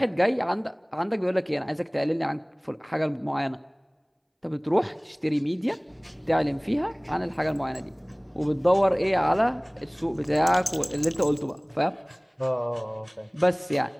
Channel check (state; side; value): identical; both; correlation 1.00